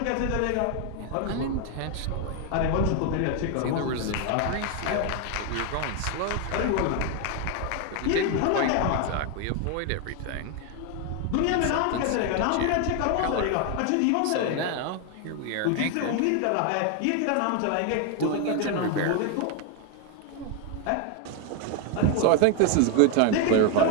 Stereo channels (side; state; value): both; different; correlation 0.01